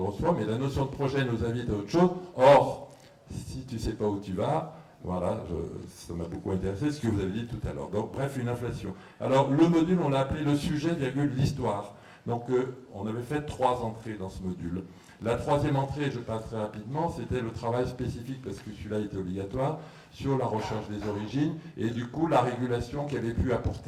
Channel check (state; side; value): identical; both; correlation 1.00